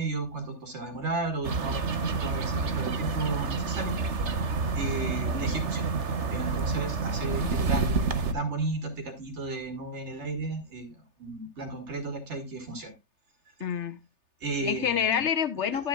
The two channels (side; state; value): left; late; 3.3 ms